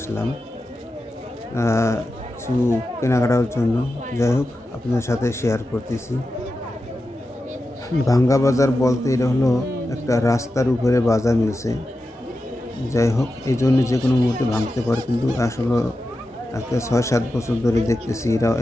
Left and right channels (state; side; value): normal; both; correlation 0.91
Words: কিছু কেনাকাটার জন্য। যাই হোক, আপনাদের সাথে শেয়ার করতেছি। ভাঙ্গা বাজার বলতে এটা হলো একটা রাস্তার উপরে বাজার মিলছে। যাই হোক, এই জন্য যে কোনো মুহূর্তে ভাঙতে পারে, কিন্তু আসলে একটা 6-7 বছর ধরে দেখতেছি এরা